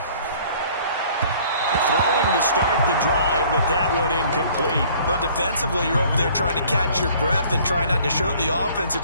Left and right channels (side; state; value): both; inverted; correlation -0.55